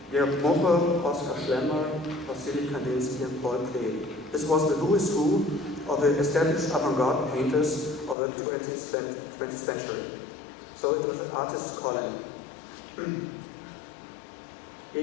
Georg Moche, Oskar Schlemmer, Wassily Kandinsky, and Paul Klee. This was the who is who of the established avant-garde painters of the 20th century. So it was an artist's colony.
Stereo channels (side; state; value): right; drops out; at 8.2 s